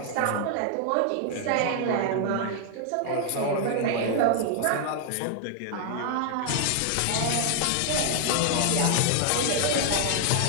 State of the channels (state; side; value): different; both; correlation 0.00